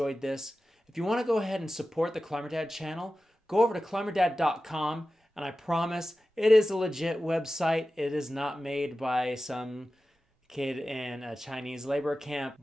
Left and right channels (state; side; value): normal; both; correlation 0.94